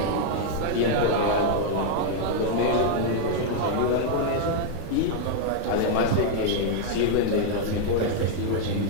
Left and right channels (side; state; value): both; different; correlation -0.01